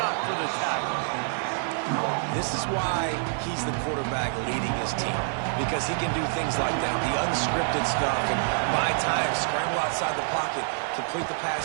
up for the tackle. This is why he's the quarterback leading his team, because he can do things like that, the unscripted stuff, and buy time, scramble outside the pocket, complete the pass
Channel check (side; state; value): left; silent; 60 dB below the other